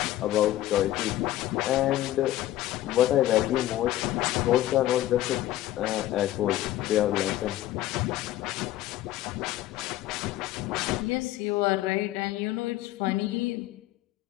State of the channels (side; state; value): right; quieter; 14.5 dB